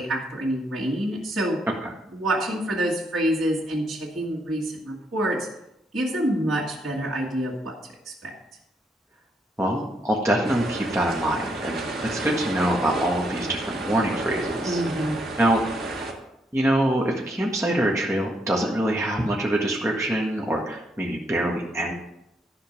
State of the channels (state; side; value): normal; both; correlation 0.75